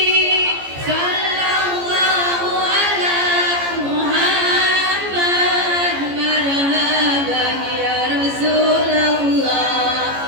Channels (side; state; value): left; late; 14 ms